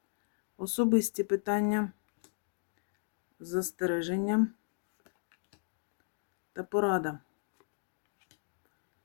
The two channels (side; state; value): right; silent; digital silence